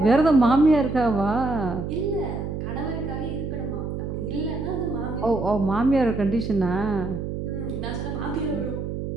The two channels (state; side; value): noise; right; hum, 5 dB below the sound